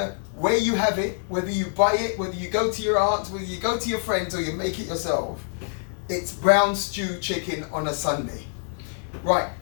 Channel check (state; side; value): silent; right; digital silence